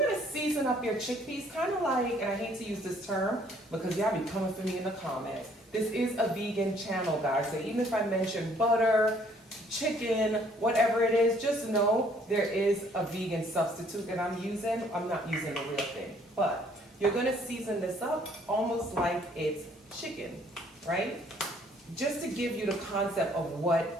season up your chickpeas, kind of like, and I hate to use this term because y'all be coming for me in the comments. This is a vegan channel, guys, so even if I mention butter, chicken, whatever it is, just know there is a vegan substitute that I'm using. I'm not using the real thing, but you're gonna season this up almost like it's chicken, right? Just to give you the concept of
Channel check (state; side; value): normal; both; correlation 0.62